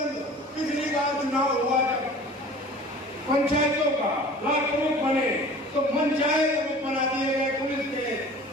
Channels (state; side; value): normal; both; correlation 0.43